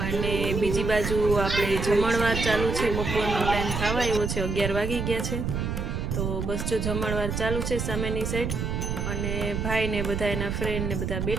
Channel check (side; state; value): right; noise; rumble, 2 dB below the sound